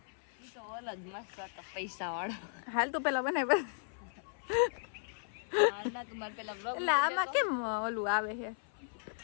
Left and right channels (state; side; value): silent; right; 54 dB below the other